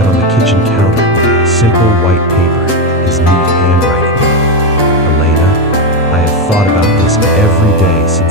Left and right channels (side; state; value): both; normal; correlation 0.09